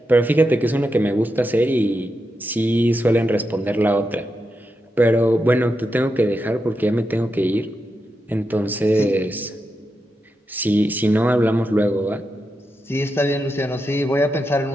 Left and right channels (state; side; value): normal; both; correlation 0.87